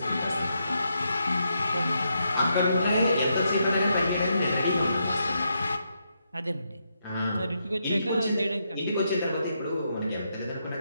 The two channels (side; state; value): both; inverted; correlation -0.80